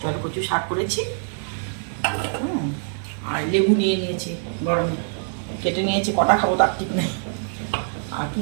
জলকচুর শাক করেছি। আর লেবু নিয়ে নিয়েছি, গরমে কেটে নিয়েছি, কটা খাবো তার ঠিক নেই। আর কি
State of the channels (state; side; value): silent; left; 60 dB below the other